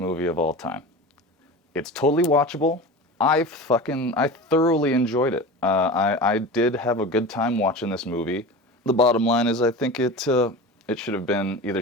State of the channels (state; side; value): normal; both; correlation 0.31